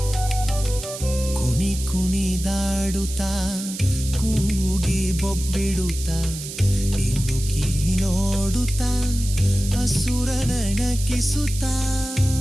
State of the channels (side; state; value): right; noise; hiss, 10 dB below the sound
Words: ಕುಣಿ ಕುಣಿದಾಡುತ್ತಾ ಕೂಗಿ ಬೊಬ್ಬಿಡುತ್ತಾ ಇನ್ನುಕಿ ನೋಡುತ್ತಾ ಅಸುರನ ನಕಿಸುತ್ತಾ.